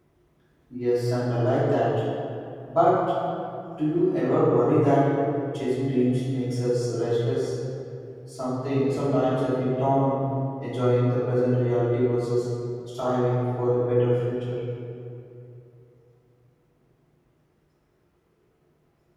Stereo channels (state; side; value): identical; both; correlation 1.00